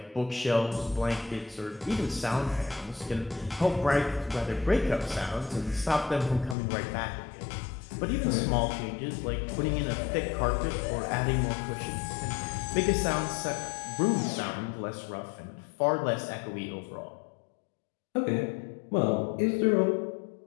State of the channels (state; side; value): drops out; right; at 6.6 s